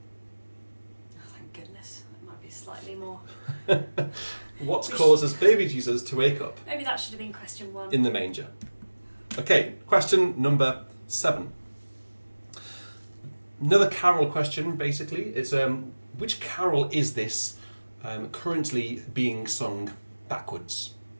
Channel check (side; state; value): both; inverted; correlation -1.00